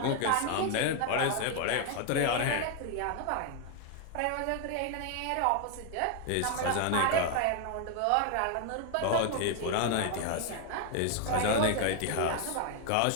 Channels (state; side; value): different; both; correlation 0.01